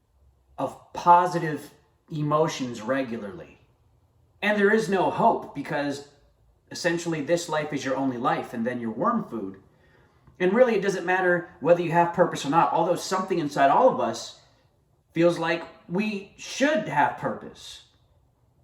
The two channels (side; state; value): both; identical; correlation 1.00